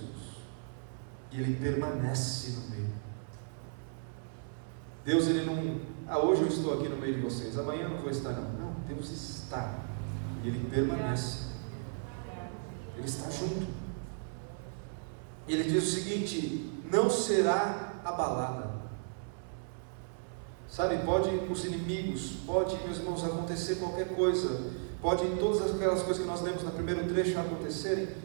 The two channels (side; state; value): left; silent; 55 dB below the other